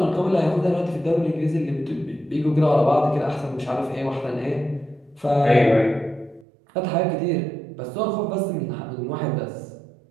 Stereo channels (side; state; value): left; drops out; at 6.5 s